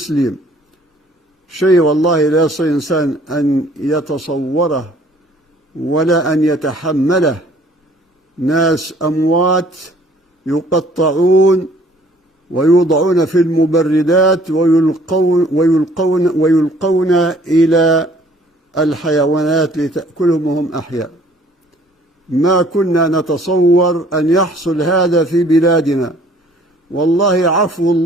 شيء والله لا يستطيع إنسان أن يتصوره ولا أن يتحمله. ناس أموات يقطعون ويوضعون في المبردات ويلقون إلى الحيوانات لتأكلهم وهم أحياء. ما كنا نتصور أن يحصل هذا في بلادنا. والله عفو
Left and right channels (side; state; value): both; normal; correlation 0.57